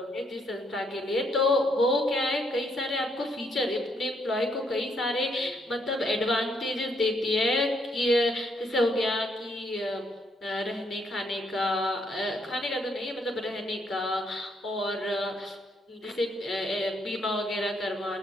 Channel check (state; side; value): normal; both; correlation 0.73